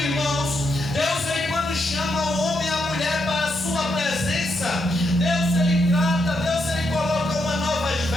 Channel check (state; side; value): normal; both; correlation 0.81